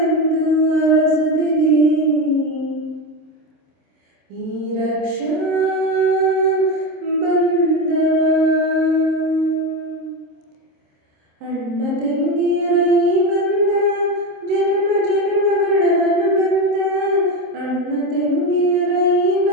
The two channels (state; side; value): late; left; 26 ms